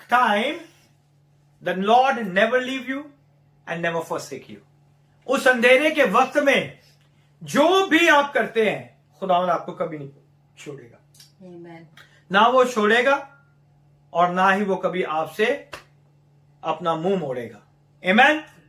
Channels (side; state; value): both; identical; correlation 1.00